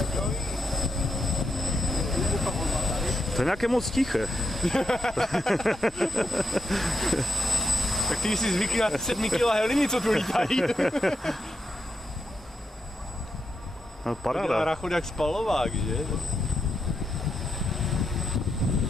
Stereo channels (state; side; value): normal; both; correlation 0.84